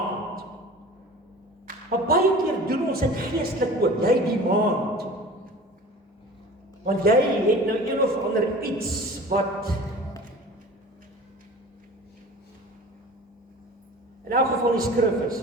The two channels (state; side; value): normal; both; correlation 0.40